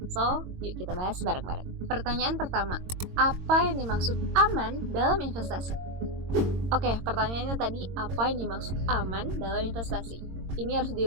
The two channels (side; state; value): left; late; 22 ms